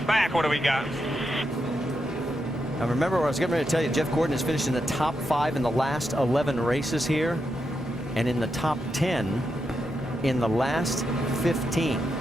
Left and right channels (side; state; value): both; normal; correlation 0.85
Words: back? What do we got? Now remember what I was getting ready to tell you. Jeff Gordon has finished in the top 5 in the last 11 races here, and in the top 10 in the last 15.